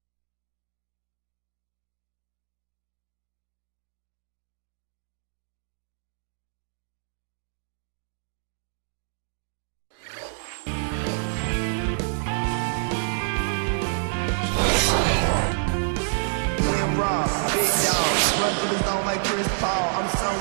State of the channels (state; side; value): silent; left; digital silence